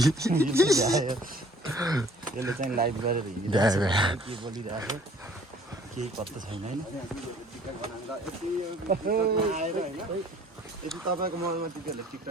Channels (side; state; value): both; normal; correlation 0.55